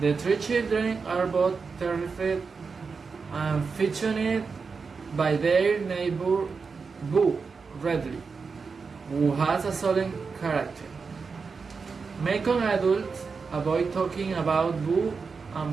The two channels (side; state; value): left; quieter; 5.0 dB